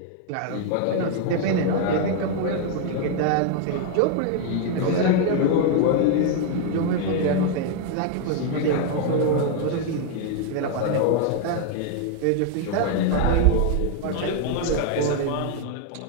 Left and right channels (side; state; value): both; different; correlation 0.00